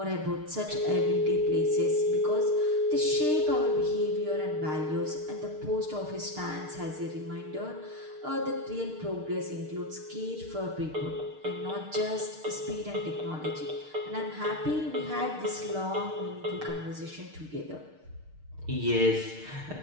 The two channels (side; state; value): left; late; 6.6 ms